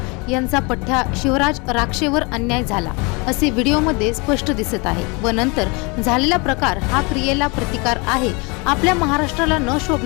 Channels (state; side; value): quieter; right; 29.2 dB